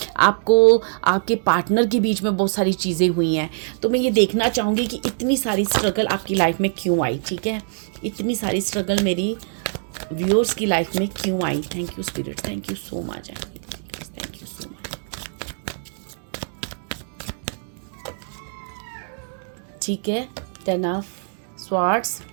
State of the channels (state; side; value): silent; left; digital silence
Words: आपको आपके पार्टनर के बीच में बहुत सारी चीज़ें हुई हैं। तो मैं ये देखना चाहूँगी कि इतनी सारी स्ट्रगल आपकी लाइफ में क्यों आई, ठीक है। इतनी सारी स्ट्रगल मेरी व्यूअर्स की लाइफ में क्यों आई। Thank you spirit, thank you so much, thank you so much, ठीक है। 10 of swords,